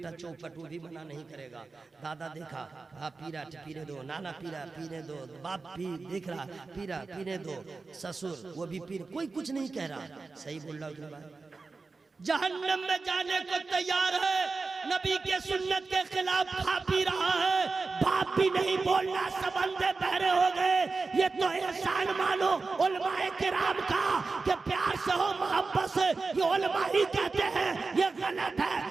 चौपट, वो भी मना नहीं करेगा। दादा देखा हाँ पी रहा पीने दो, नाना पी रहा पीने दो, बाप भी देख रहा पी रहा पीने दो, ससुर वो भी पी, कोई कुछ नहीं कह रहा। सही बोल रहा हूँ। जहन्नम में जाने को तैयार है, नबी के सुन्नत के खिलाफ खा पी रहा है, बाप भी नहीं बोलना, सबंदे बहरे हो गए। ये तो एहसान मानो उलमाए किराम का कि प्यार से हो मोहब्बत से, ये उलमा ही कहते हैं ये गलत है,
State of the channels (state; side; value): quieter; left; 4.0 dB